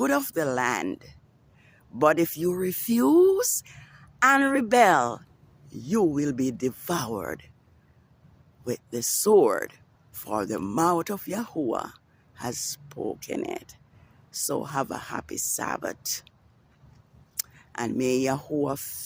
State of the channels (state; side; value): identical; both; correlation 1.00